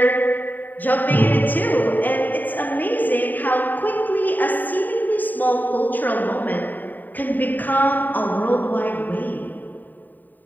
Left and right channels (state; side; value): late; right; 0.088 ms